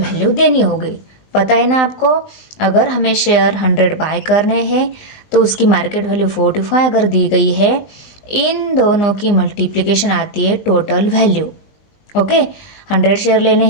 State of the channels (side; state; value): right; late; 20 ms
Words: देनी होगी। पता है ना आपको, अगर हमें शेयर 100 बाय करने हैं तो उसकी मार्केट वैल्यू 45 अगर दी गई है, इन दोनों की मल्टीप्लिकेशन आती है टोटल वैल्यू। ओके 100 शेयर लेने